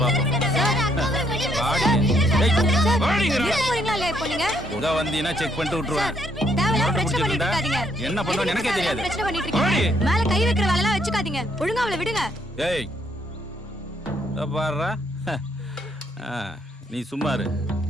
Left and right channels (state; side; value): normal; both; correlation 0.71